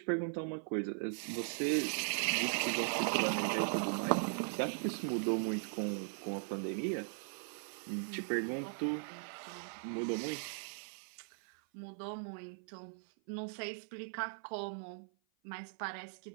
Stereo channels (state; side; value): silent; left; 52 dB below the other